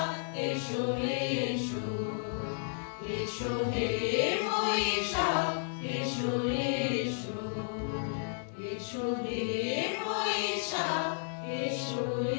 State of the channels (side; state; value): right; silent; digital silence